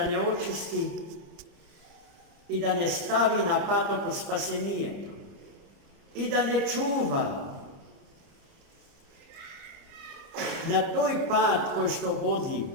očisti i da ne stavi na patok od spasenije i da ne čuva na toj pad koji što vodi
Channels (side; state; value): left; late; 29 ms